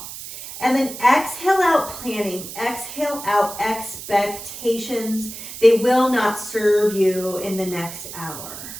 And then exhale out planning, exhale out expectations. They will not serve you in the next hour.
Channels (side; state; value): right; noise; hiss, 11 dB below the sound